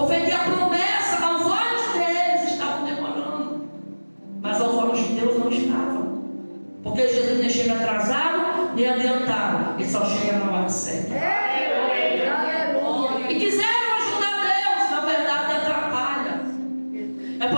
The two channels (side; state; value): both; inverted; correlation -1.00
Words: a promessa aos olhos deles estavam demorando, mas aos olhos de Deus não estava. Porque Jesus nem chega atrasado, nem adiantado, ele só chega na hora certa. E quiseram ajudar Deus, na verdade atrapalha. É